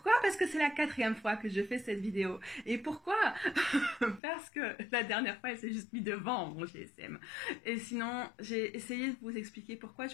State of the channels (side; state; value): right; drops out; at 4.2 s